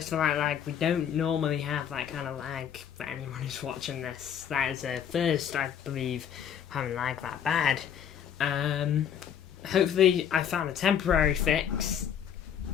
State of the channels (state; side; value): quieter; right; 8.8 dB